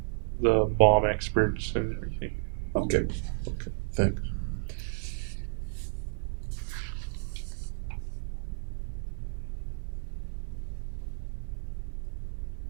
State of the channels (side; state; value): left; silent; digital silence